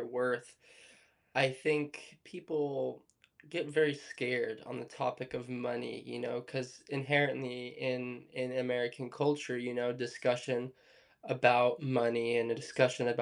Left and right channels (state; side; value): identical; both; correlation 1.00